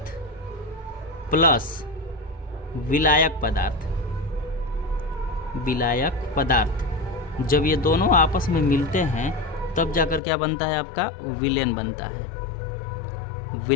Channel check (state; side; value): drops out; right; at 10.2 s